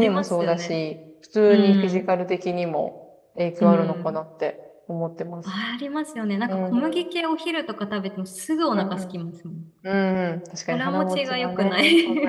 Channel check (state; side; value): identical; both; correlation 1.00